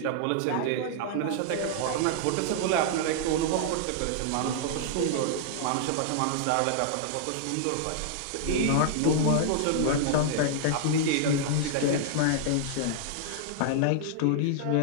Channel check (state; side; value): different; both; correlation -0.01